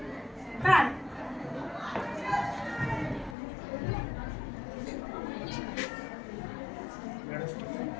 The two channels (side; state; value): right; drops out; at 3.4 s